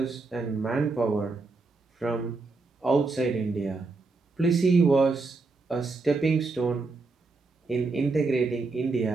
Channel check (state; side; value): quieter; left; 3.7 dB